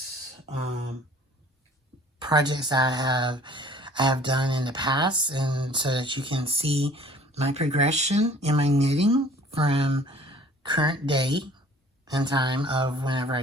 projects I have done in the past, and so that you can see my progression in my knitting from current day and time of whenever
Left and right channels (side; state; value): both; normal; correlation 0.51